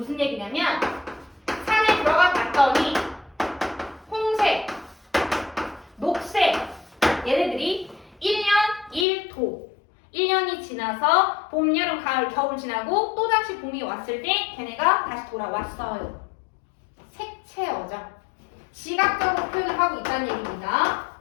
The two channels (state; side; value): drops out; right; at 9.1 s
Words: 얘기냐면 산에 들어가 봤더니 홍색, 녹색 얘네들이 1년 1도 1년이 지나서 봄, 여름, 가을, 겨울 지나고 또다시 봄이 왔을 때 걔네가 다시 돌아왔어요. 색채어죠. 시각적으로 표현을 하고 있다는 얘기입니다.